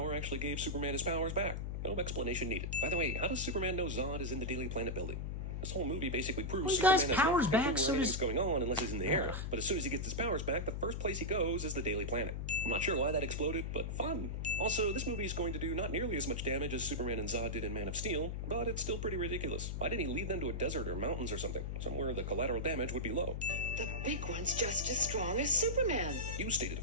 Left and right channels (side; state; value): left; noise; hum, 3 dB below the sound